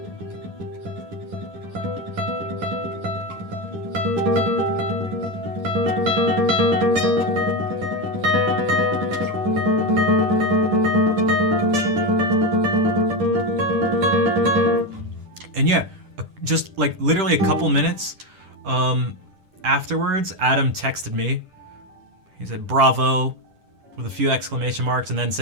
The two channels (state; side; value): late; left; 10 ms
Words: And yeah, just like literally a couple minutes afterwards, Adam texted me. He said, bravo, with a few exclamation marks, and then